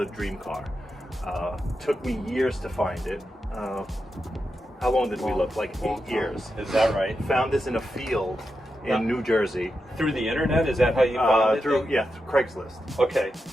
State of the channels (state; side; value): normal; both; correlation 0.88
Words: dream car. Took me years to find it. How long did we look? Like 8 years. Is that right? Found this in a field in New Jersey. Through the internet? Is that how you found it? Through Craigslist. Okay.